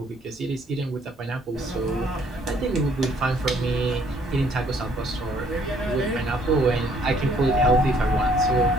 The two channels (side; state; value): both; normal; correlation 0.64